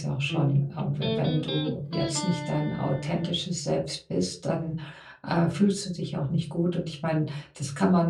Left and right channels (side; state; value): both; identical; correlation 1.00